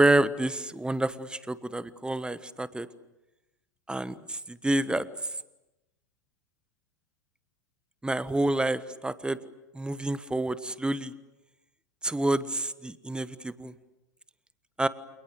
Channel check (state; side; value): normal; both; correlation 0.86